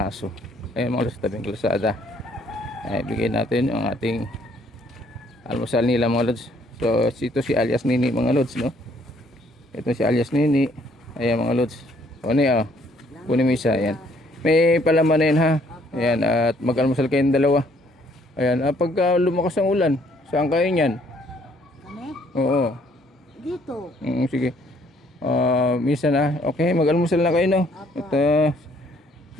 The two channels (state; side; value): normal; both; correlation 0.64